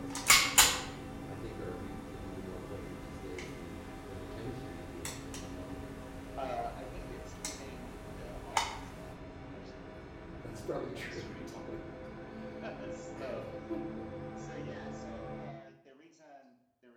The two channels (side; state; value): both; identical; correlation 1.00